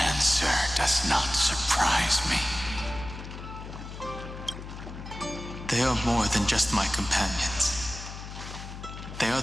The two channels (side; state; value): left; noise; hum, 11 dB below the sound